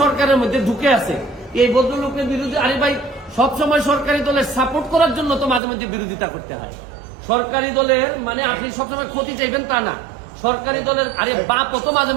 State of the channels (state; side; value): drops out; left; at 5.6 s